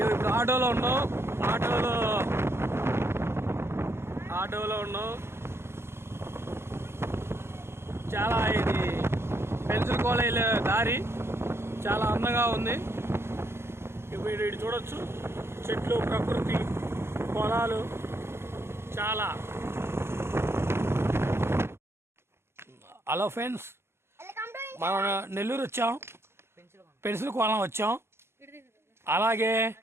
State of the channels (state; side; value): late; left; 0.12 ms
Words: ఇప్పుడు ఆటోలో ఉన్నాం. చాలా ఇది పెన్సిల్ కాలేజ్ దారి చాలా అందంగా ఉంది. ఇప్పుడు ఇటు చూడొచ్చు, చెట్లు, ప్రకృతి, పొలాలు చాలా. హలో ఫ్రెండ్స్, మనం నెల్లూరు వచ్చాం, పెన్సిల్ కోలం వచ్చాం. అలాగే